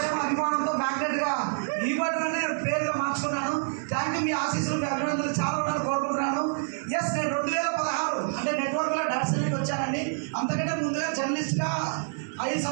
అభిమానంతో మ్యాగ్నెట్ గా ఈ బట్టనే పేరుగా మార్చుకున్నాను. Thank you. మీ ఆశీస్సులు మీ అభినందనలు చాలా ఉండాలని కోరుకుంటున్నాను. ఎస్, నేను 2016 అంటే నెట్వర్క్ లో డాన్సర్కి వచ్చానండి. అంతకంటే ముందుగా జర్నలిస్ట్ గా 5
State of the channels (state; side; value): silent; left; 60 dB below the other